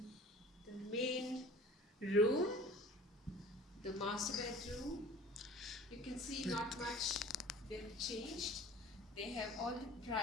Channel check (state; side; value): normal; both; correlation 0.45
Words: the main room, the master bedroom. You can see not much they've changed. They have all the